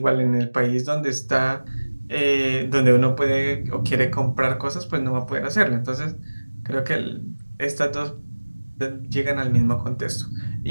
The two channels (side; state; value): both; inverted; correlation -1.00